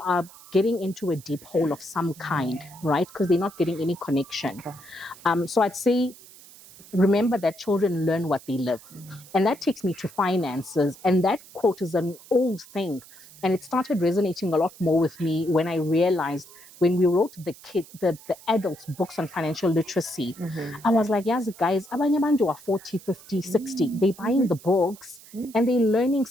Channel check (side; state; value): right; noise; hiss, 21 dB below the sound